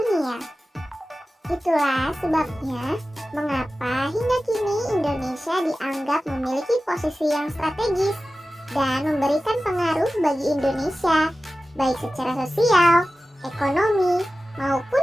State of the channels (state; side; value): normal; both; correlation 0.95